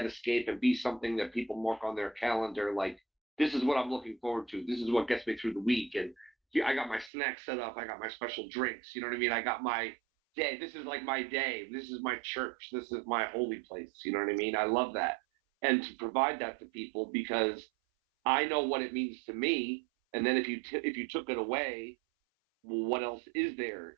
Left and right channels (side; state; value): left; drops out; at 7.1 s